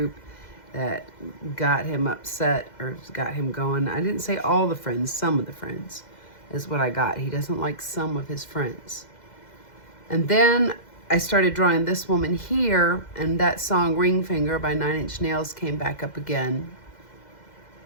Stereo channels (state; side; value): late; right; 2.0 ms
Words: that got him upset or got him going. I didn't say all the friends, some of the friends is what I got. He doesn't like some of his friends. And then I started drawing this woman here, and that song Ring Finger by 9 Inch Nails came back up again.